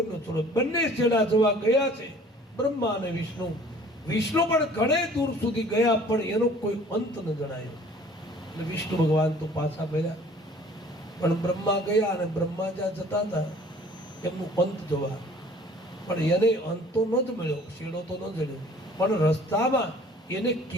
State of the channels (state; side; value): normal; both; correlation 0.51